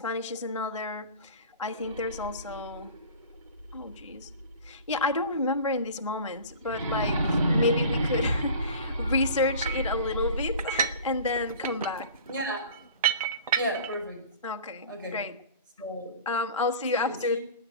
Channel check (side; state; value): both; inverted; correlation -0.41